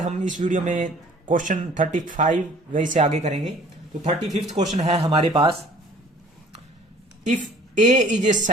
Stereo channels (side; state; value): both; normal; correlation 0.52